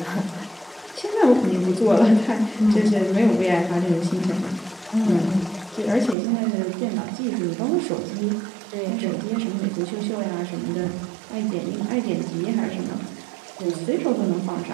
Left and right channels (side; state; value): left; drops out; at 6.2 s